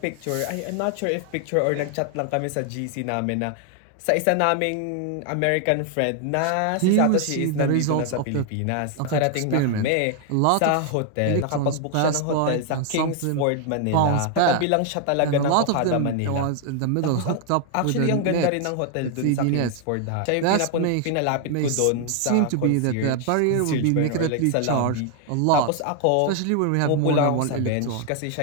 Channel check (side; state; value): both; different; correlation 0.00